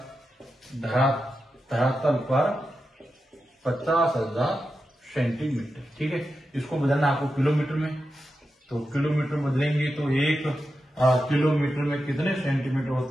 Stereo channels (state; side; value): normal; both; correlation 0.90